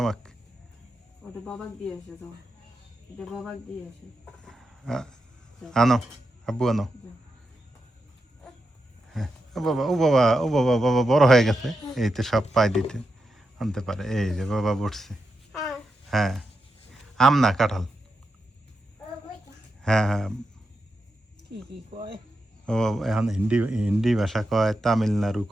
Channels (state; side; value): normal; both; correlation 0.87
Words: আমাকে। ওটা বাবাক দিয়ে আসে তো, এটা বাবাক দিয়ে আসে। আনো, আব্বু আনো। ও বাবা, ও বাবা, ও বাবা, বাবা বড় হয়ে গেছে, এই তো সব পাই দিতে আনতে পারে। এই যে বাবা বসছে। হ্যাঁ, আম না কাঁঠাল। হ্যাঁ হ্যাঁ, কি কি কয় ও এখন হিন্দি হিন্দি ভাষা কয়, তামিলনাড়ু